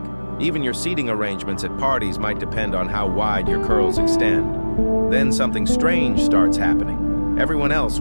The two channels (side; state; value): both; inverted; correlation -1.00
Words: Even your seating arrangements at parties might depend on how wide your curls extend. Then something strange starts happening. Everyone else